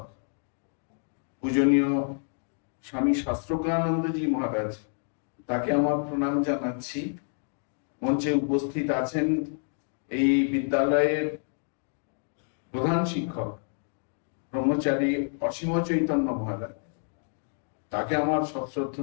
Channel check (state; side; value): silent; right; 57 dB below the other